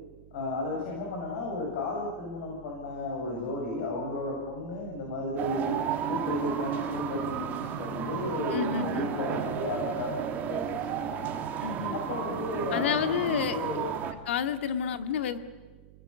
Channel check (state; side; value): noise; right; hum, 21 dB below the sound